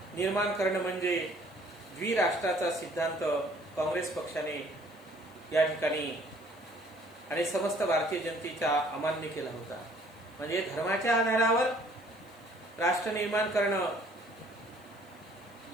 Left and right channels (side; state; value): left; noise; hiss, 29 dB below the sound